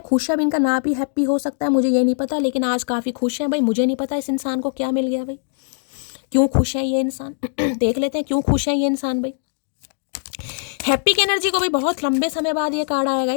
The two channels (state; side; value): silent; right; digital silence